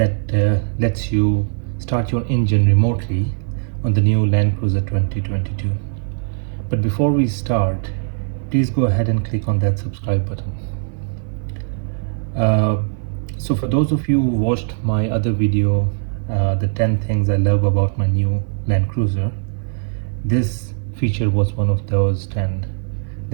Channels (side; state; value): left; silent; 56 dB below the other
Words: lets you start your engine remotely on the new Land Cruiser 2022. But before we start, please go ahead and click on that subscribe button. So for those of you who watched my other video, the 10 things I love about my new Land Cruiser, this feature was one of those 10